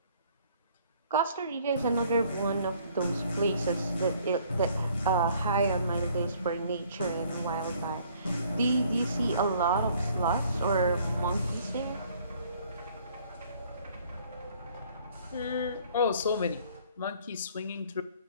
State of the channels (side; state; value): both; inverted; correlation -0.59